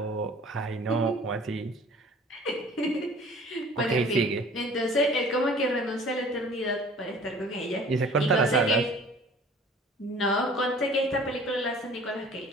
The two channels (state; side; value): normal; both; correlation 0.49